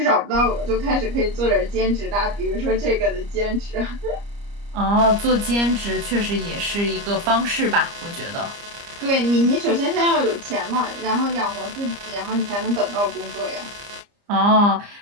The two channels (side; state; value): left; late; 30 ms